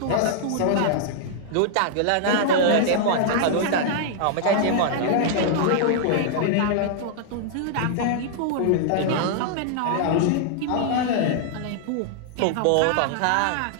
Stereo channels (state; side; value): different; both; correlation -0.01